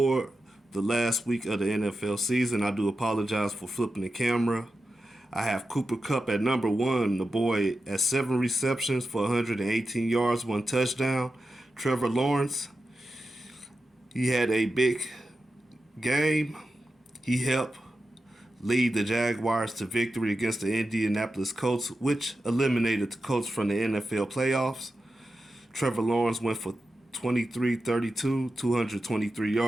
the last week of the NFL season. I do apologize for flipping the camera. I have Cooper Kupp at number 1, the boy at 7 receptions for 118 yards, 1 touchdown. Trevor Lawrence, he had a big game. He helped lead the Jaguars to victory against the Indianapolis Colts, which eliminated the Colts from the NFL playoffs. Trevor Lawrence went for 23-32, 223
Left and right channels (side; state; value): both; normal; correlation 0.91